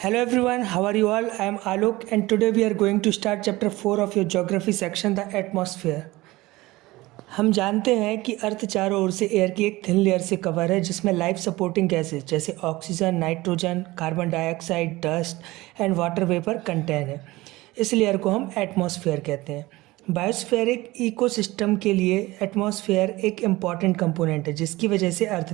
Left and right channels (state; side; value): quieter; left; 19.7 dB